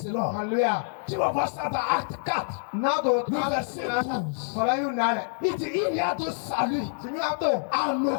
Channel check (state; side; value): silent; right; 60 dB below the other